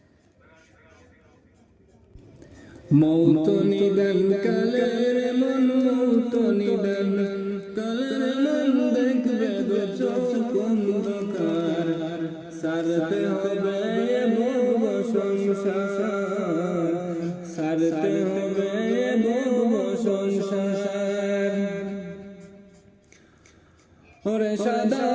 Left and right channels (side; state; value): both; identical; correlation 1.00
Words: মৌত নিদান কালের মন, মৌত নিদান কালের মন, দেখবে দু চোখ অন্ধকার, ছাড়তে হবে ভব সংসার, ছাড়তে হবে ভব সংসার। ওরে সাদা